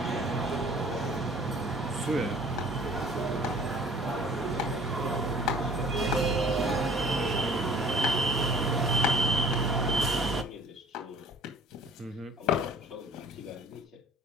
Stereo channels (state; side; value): normal; both; correlation 0.50